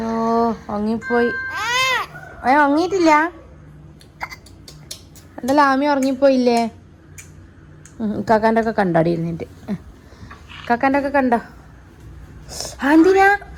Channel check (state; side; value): identical; both; correlation 1.00